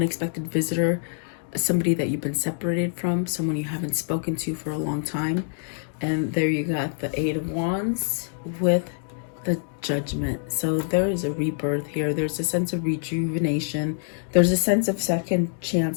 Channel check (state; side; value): silent; right; digital silence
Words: visitor, somebody that you've been separated from, someone you haven't spoken to for a long time. And there you got the Eight of Wands with the Judgment. So there is a rebirth here. There's a sense of rejuvenation. There's a sense of second